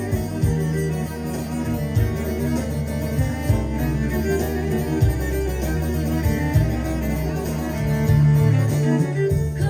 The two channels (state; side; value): identical; both; correlation 1.00